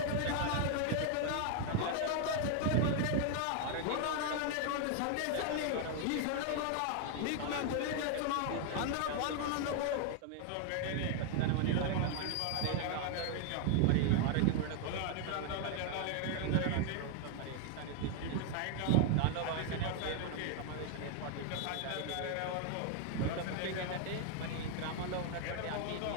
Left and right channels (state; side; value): different; both; correlation 0.00